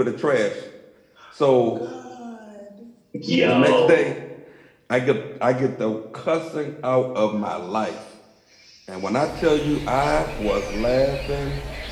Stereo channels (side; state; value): both; identical; correlation 1.00